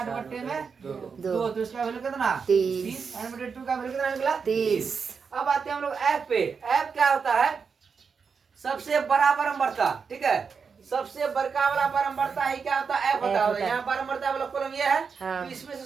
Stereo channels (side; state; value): left; quieter; 5.7 dB